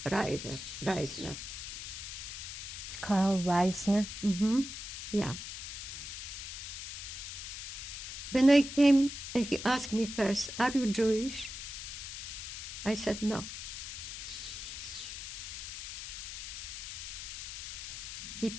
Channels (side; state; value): left; noise; hiss, 7 dB below the sound